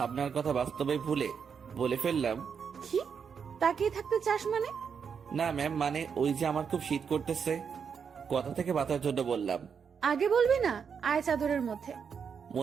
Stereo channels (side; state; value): left; quieter; 6.6 dB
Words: কথা বাস্তবে ভুলে বলে ফেললাম। কি তাকিয়ে থাকতে চাস মানে? না ম্যাম, মানে ওই যে আমার খুব শীত করতেছে, কথা থেকে বাঁচার জন্য বললাম। আগে বলবি না? আয় চাদরের মধ্যে।